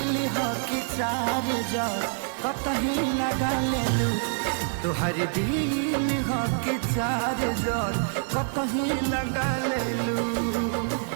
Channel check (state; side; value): silent; left; 61 dB below the other